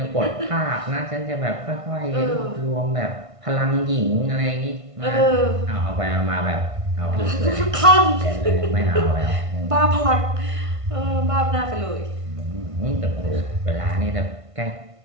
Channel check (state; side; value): late; left; 1.5 ms